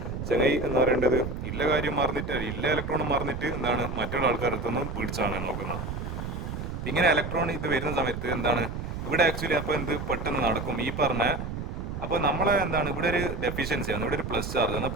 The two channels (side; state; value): right; noise; rumble, 5 dB below the sound